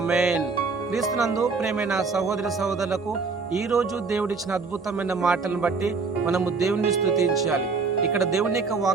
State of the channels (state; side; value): quieter; left; 4.6 dB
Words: క్రీస్తునందు ప్రేమైన సహోదరి సహోదరులకు ఈ రోజు దేవుడిచ్చిన అద్భుతమైన మాటలను బట్టి మనము దేవుని స్తుతించాలి. ఇక్కడ దేవుని యొక్క